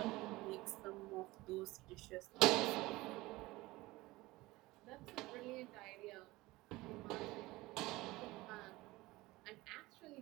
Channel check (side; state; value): left; quieter; 19.9 dB